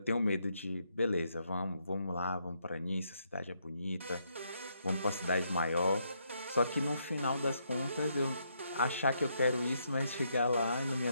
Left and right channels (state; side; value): inverted; both; correlation -0.76